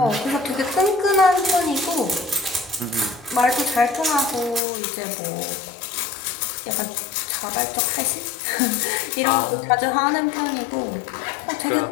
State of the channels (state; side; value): drops out; right; at 4.6 s